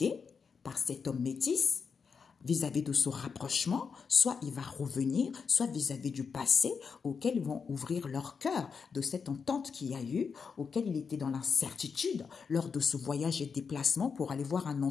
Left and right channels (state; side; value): quieter; right; 5.7 dB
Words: par cet homme métis vis-à-vis de ce rapprochement, soit il va revenir, soit vis-à-vis du passé auquel ils vont ouvrir leur cœur de cette entente qu'il y a eu, auquel il était dans l'incertitude lors de ce voyage et déplacement pour aller voir un